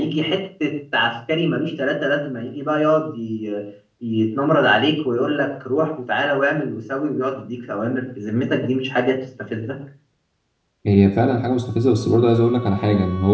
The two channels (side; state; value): both; identical; correlation 1.00